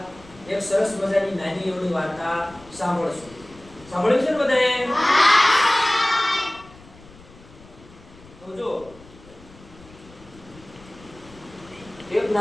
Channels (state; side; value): noise; left; rumble, 22 dB below the sound